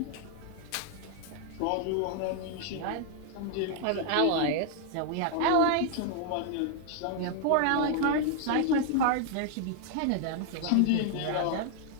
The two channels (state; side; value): different; both; correlation 0.00